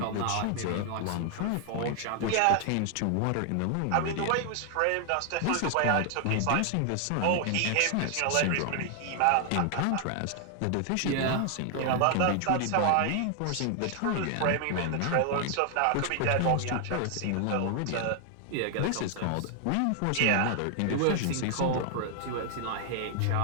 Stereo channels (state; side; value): different; both; correlation 0.00